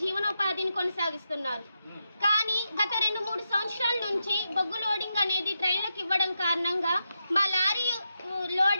జీవనోపాధిని కొనసాగిస్తున్నారు. కానీ గత 2-3 సంవత్సరాల నుంచి బొగ్గు లోడింగ్ అనేది ట్రైన్లకు ఇవ్వడం కారణంగా మా లారీ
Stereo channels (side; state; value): both; inverted; correlation -0.86